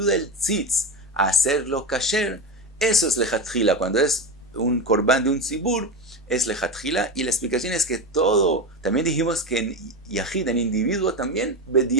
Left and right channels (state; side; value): normal; both; correlation 0.19